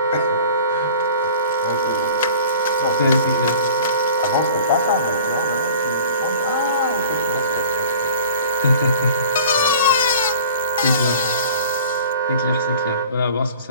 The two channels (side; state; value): both; inverted; correlation -0.45